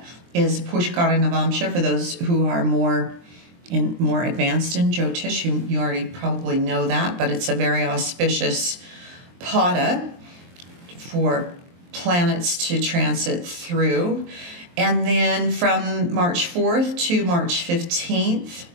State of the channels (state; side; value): late; left; 23 ms